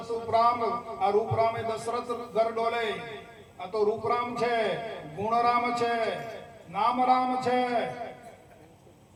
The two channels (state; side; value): identical; both; correlation 1.00